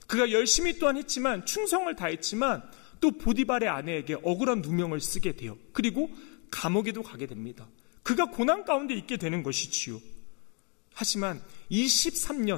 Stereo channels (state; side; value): quieter; right; 35.7 dB